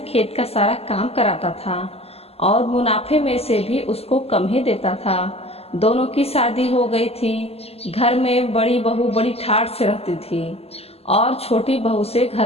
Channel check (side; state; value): right; late; 0.29 ms